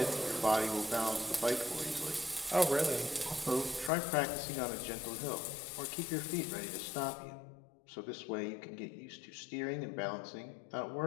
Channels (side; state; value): right; drops out; at 3.9 s